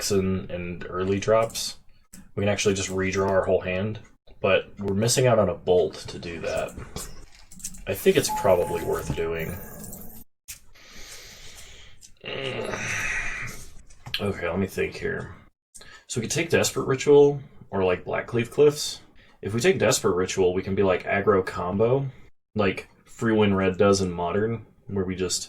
and early drops, we can actually just redraw our whole hand. But we're missing out on a Bolt to do that. I think it's probably worth doing. Okay, let me think here. So we could take Desperate Ritual, or like Blackcleave Cliffs. If we take Desperate Ritual, we can be like aggro combo, like Free Win Red does in Modern, where we just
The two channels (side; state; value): both; identical; correlation 1.00